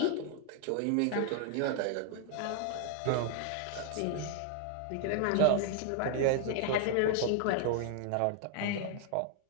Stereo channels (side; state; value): both; different; correlation 0.00